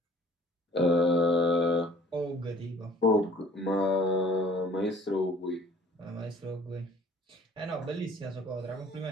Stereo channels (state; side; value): normal; both; correlation 0.53